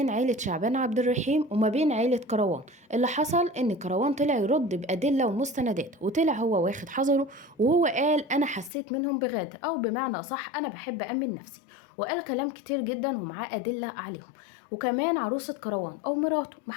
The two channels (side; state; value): right; drops out; at 8.7 s